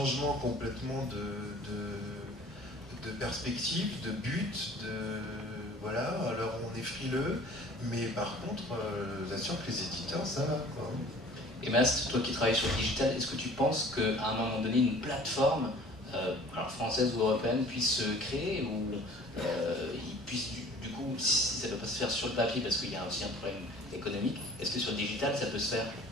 complètement de perspective, de but, voilà, alors on est frileux, mais par contre, je vous assure que les éditeurs, ça va, quoi. Et Mast, toi qui travailles sur le digital, est-ce que tu penses qu'à un moment donné, une plateforme, alors française ou européenne, puisse se créer, ou il puisse, du coup, si ça ne peut pas se faire sur le papier, parce qu'il y a aussi un problème économique, est-ce que sur le digital, ça peut se faire?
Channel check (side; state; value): both; normal; correlation 0.48